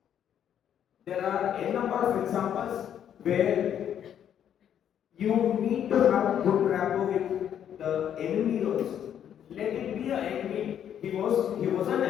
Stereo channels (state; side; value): quieter; right; 9.5 dB